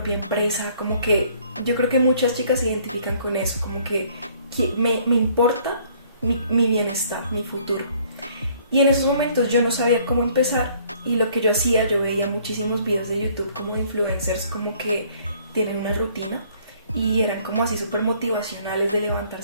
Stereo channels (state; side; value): inverted; both; correlation -0.60